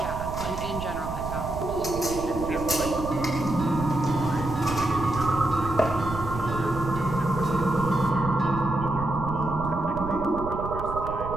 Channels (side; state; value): right; noise; rumble, 8 dB below the sound